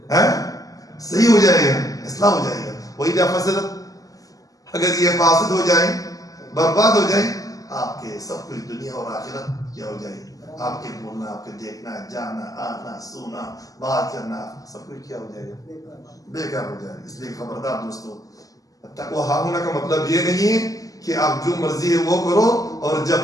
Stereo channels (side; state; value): right; late; 0.17 ms